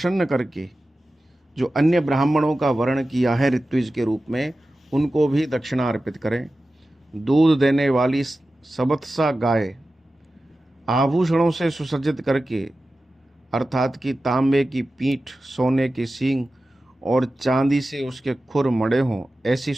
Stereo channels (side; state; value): both; normal; correlation 0.94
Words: करके जो अन्य ब्राह्मणों का वर्ण किया है ऋत्विज के रूप में, उनको भी दक्षिणा अर्पित करें। दूध देने वाली सबत्सा गाय आभूषणों से सुसज्जित करके अर्थात कि तांबे की पीठ, सोने के सींग और चांदी से उसके खुर मड़े हों, ऐसी